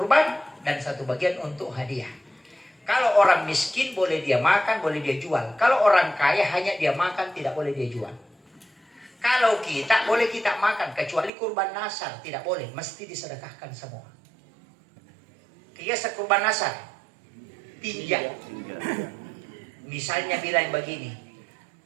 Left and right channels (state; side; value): drops out; left; at 11.3 s